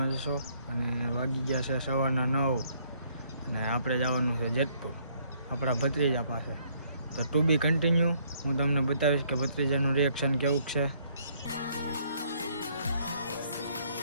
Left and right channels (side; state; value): both; inverted; correlation -0.66